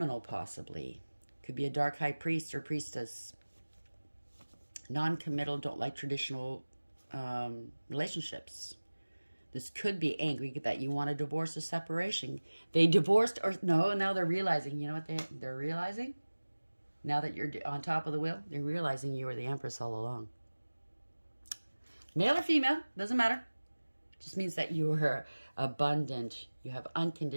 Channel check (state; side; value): inverted; both; correlation -1.00